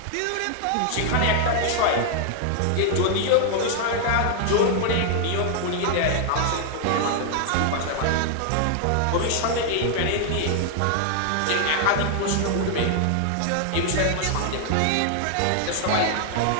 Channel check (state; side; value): different; both; correlation 0.00